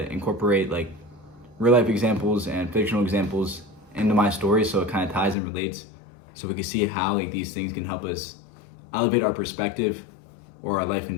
incorporate like real life examples and fictional examples into my stories so it kind of ties and relates so we can see how like these things can help us elevate our perspective or our life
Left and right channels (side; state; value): right; drops out; at 5.4 s